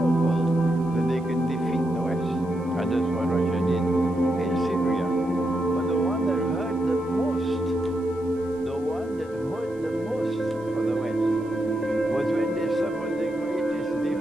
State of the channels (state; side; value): noise; right; hiss, 30 dB below the sound